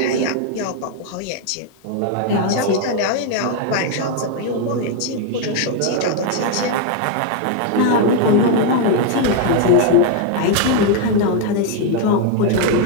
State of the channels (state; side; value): different; both; correlation 0.01